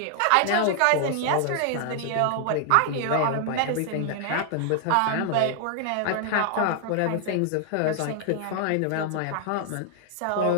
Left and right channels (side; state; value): both; different; correlation 0.00